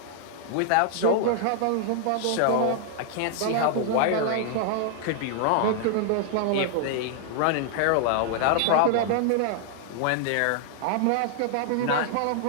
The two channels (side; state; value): both; different; correlation -0.01